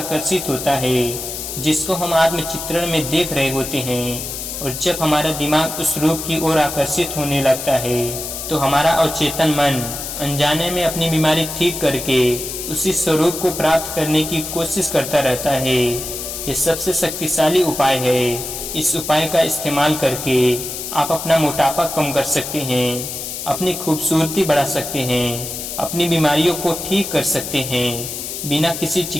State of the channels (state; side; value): noise; left; hiss, 7 dB below the sound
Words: होता है जिसको हम आत्मचित्रण में देख रहे होते हैं। और जब हमारा दिमाग उस रूप की ओर आकर्षित होने लगता है, तो हमारा अवचेतन मन अनजाने में अपनी बीमारी ठीक करके उसी स्वरूप को प्राप्त करने की कोशिश करता रहता है। ये सबसे शक्तिशाली उपाय है। इस उपाय का इस्तेमाल करके आप अपना मोटापा कम कर सकते हैं, अपनी खूबसूरती बढ़ा सकते हैं, अपनी बीमारियों को ठीक कर सकते हैं। बिना किसी